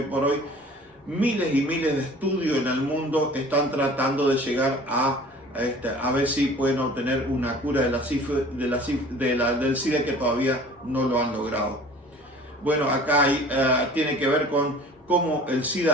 por hoy miles y miles de estudios en el mundo están tratando de llegar a ver si pueden obtener una cura del SIDA, que todavía no lo han logrado. Bueno, acá tiene que ver con cómo el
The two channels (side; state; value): both; normal; correlation 0.46